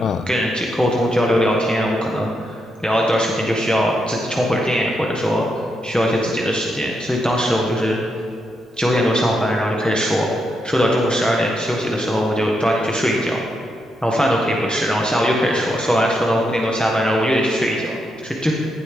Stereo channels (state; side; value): normal; both; correlation 0.81